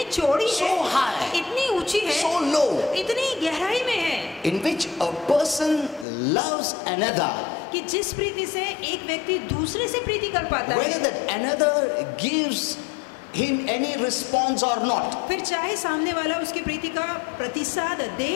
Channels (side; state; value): right; drops out; at 6.1 s